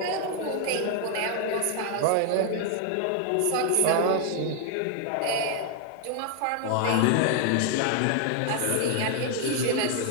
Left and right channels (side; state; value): both; different; correlation 0.00